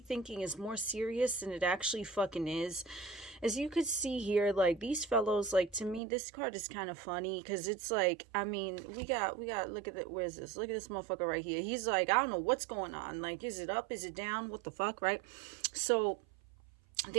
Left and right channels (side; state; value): left; drops out; at 6.0 s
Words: is more serious than it actually fucking is. As you could see here, like these fellows, like to me, this card is kind of funny because it's like, I mean, we got, look at it. Where's this? Look at this motherfucker right here. He's like, I don't know what's going on. Like, is it up? Is it down? What the fuck, right? So